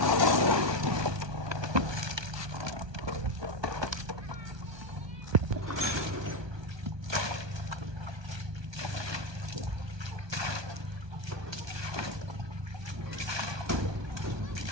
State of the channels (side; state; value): left; late; 1.2 ms